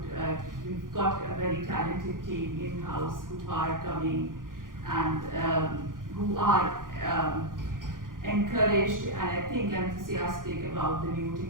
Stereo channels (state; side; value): late; left; 0.90 ms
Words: we've got a very talented team in-house who are coming and who are encouraged and I think enthusiastic about the new